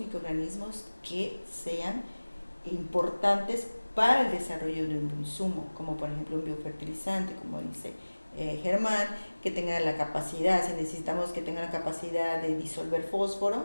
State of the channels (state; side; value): inverted; both; correlation -1.00